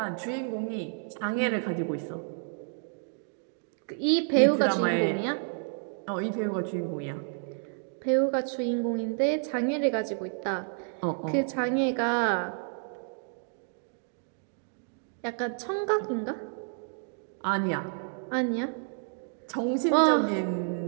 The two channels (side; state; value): left; silent; 58 dB below the other